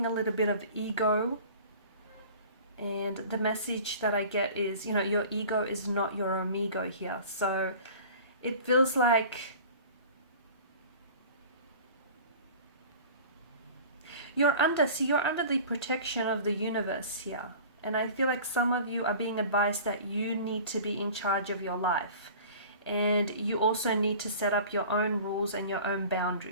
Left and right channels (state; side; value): inverted; both; correlation -0.42